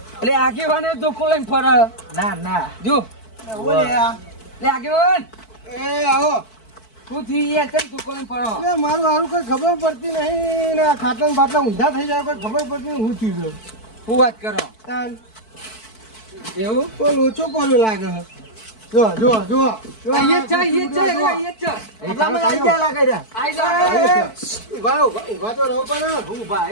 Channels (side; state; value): right; late; 4.6 ms